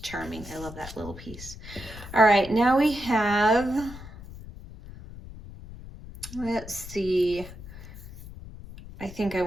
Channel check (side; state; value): left; noise; rumble, 14 dB below the sound